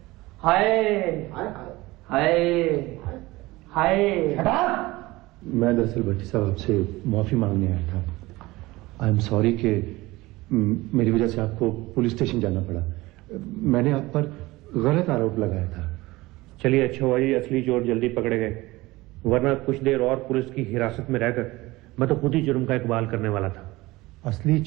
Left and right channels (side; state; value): left; quieter; 20.2 dB